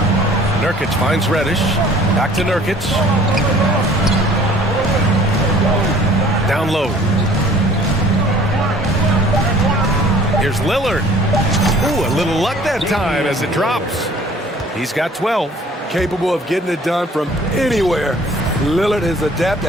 Nurkic finds Reddish. Back to Nurkic. Down low. Here's Lillard. Ooh, a little luck that time as it drops. He's got 12. Capable of getting it done from anywhere. Lillard is adept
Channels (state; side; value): normal; both; correlation 0.52